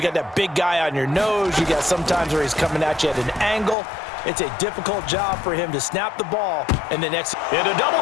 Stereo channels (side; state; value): right; drops out; at 3.8 s